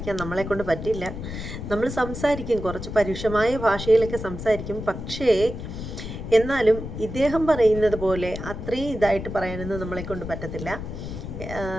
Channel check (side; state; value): left; noise; rumble, 8 dB below the sound